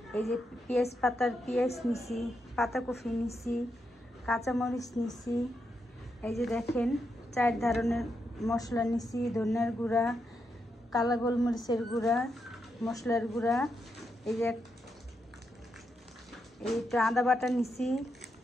এই যে পেঁয়াজ নিছি, পাতাকপি নিছি, কাঁচামরিচ নিছি। এই যে দেখেন 4 ধরনের মশলা নিছি, ধনিয়ার গুঁড়া, কালো গোলমরিচের গুঁড়া, মশলার গুঁড়া। এই যে একটু আদা বাটা নিছি,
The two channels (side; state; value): both; normal; correlation 0.83